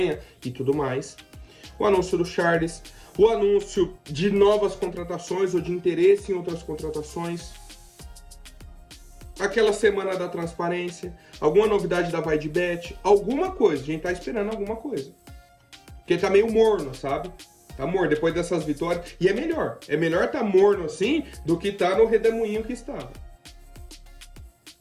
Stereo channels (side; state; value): both; identical; correlation 1.00